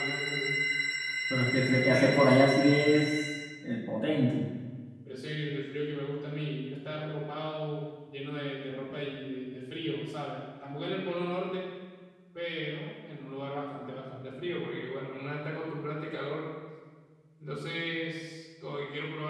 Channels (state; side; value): identical; both; correlation 1.00